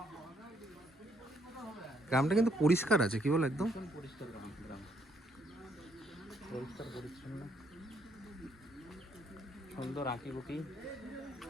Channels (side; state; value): both; normal; correlation 0.71